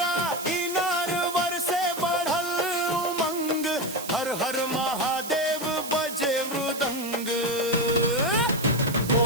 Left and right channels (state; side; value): noise; right; hiss, 10 dB below the sound